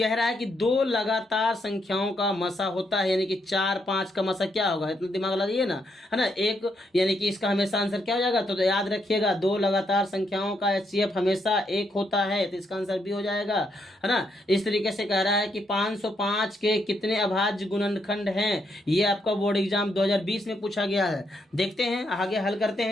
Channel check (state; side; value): normal; both; correlation 0.77